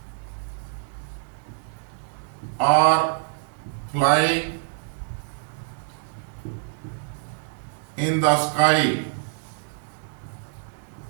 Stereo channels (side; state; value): left; silent; digital silence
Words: are flying in the sky,